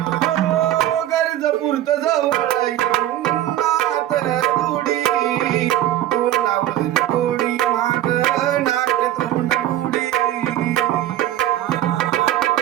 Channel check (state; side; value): quieter; left; 13.1 dB